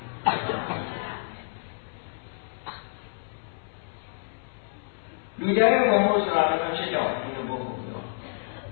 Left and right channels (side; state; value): right; silent; 59 dB below the other